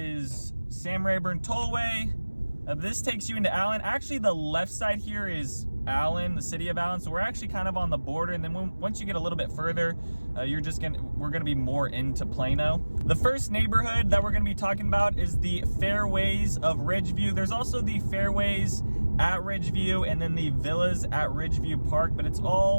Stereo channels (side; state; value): both; inverted; correlation -1.00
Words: Sam Rayburn Tollway. This takes you into Allen. Actually, the left side here is Allen, the city of Allen. So we're actually kind of on the border. And then once you get a little bit further, we're gonna be more into Plano. The first neighborhood that we're gonna be talking about is the Fairways of Ridgeview. There's also the Fairways at Ridgeview and then the Villas at Ridgeview Park, but it's